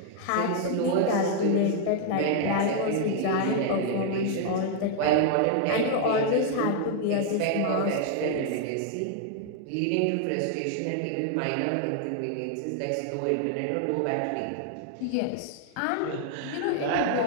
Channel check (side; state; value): both; different; correlation 0.00